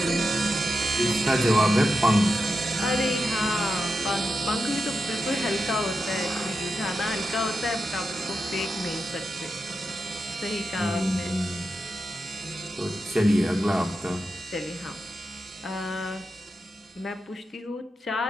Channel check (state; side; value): normal; both; correlation 0.88